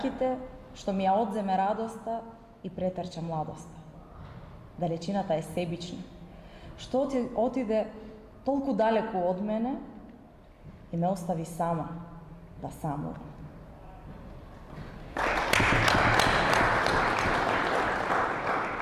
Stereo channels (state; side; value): identical; both; correlation 1.00